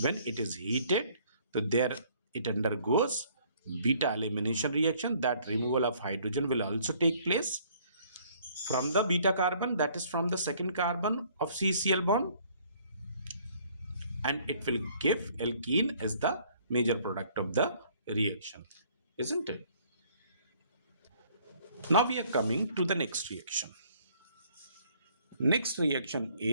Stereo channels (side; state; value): both; inverted; correlation -0.60